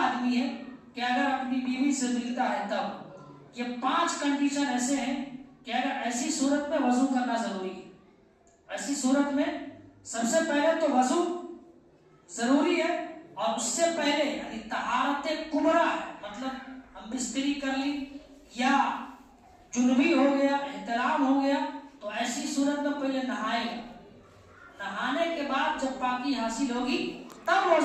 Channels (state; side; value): identical; both; correlation 1.00